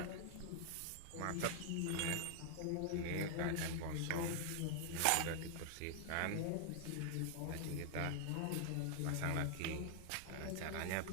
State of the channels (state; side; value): different; both; correlation 0.00